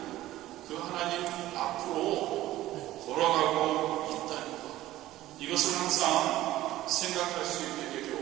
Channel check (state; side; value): quieter; left; 15.3 dB